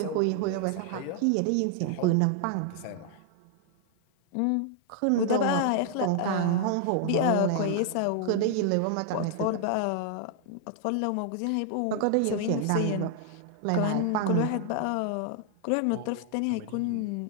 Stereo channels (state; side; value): different; both; correlation 0.00